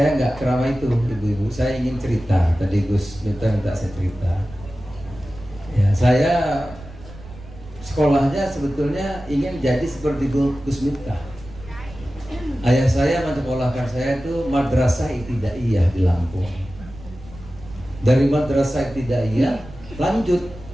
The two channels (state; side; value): noise; right; rumble, 17 dB below the sound